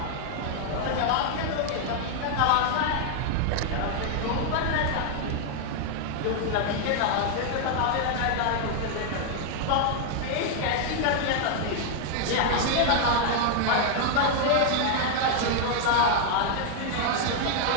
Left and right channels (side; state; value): both; different; correlation 0.00